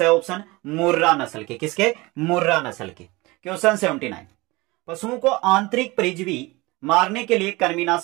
ऑप्शन, मुर्रा नस्ल के। किसके? मुर्रा नस्ल के। क्वेश्चन 79, पशुओं को आंतरिक परजीवी मारने के लिए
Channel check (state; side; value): quieter; left; 22.7 dB